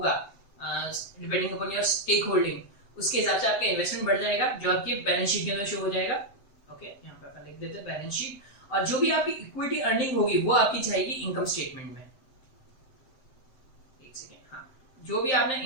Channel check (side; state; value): right; late; 7.8 ms